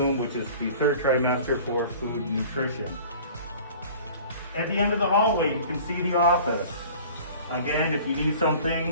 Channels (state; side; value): inverted; both; correlation -0.45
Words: which is the 3rd trimester for food and nutrition. At the end of the hallway, you can see the office. Again, if you need